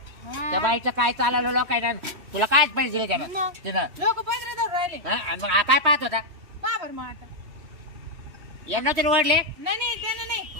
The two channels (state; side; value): late; left; 3.0 ms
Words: त्या बाईचं काय चालवलं लोकांना तुला काय पैसे दिले त्यानं मग तिनं. लोक पैसे धरून राहिले. हा, आणि मग हा काय पाहत होता. बाबर मग आता यांना तरी ओढले. नाही त्याने नाही